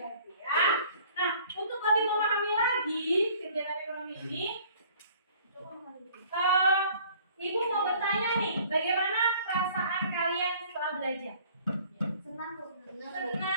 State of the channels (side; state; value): both; inverted; correlation -0.54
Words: ya. Nah, untuk lebih memahami lagi kegiatan ekonomi ini, Ibu mau bertanya nih, bagaimana perasaan kalian setelah belajar? Senang.